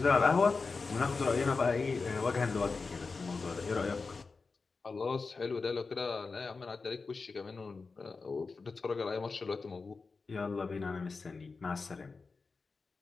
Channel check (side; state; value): right; quieter; 4.3 dB